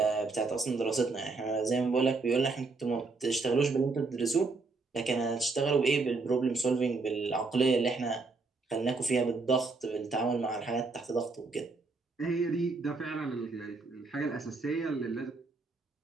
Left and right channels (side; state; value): left; quieter; 3.9 dB